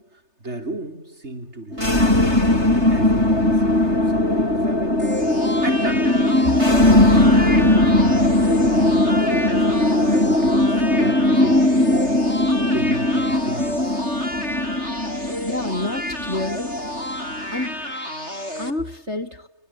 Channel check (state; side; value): late; left; 3.3 ms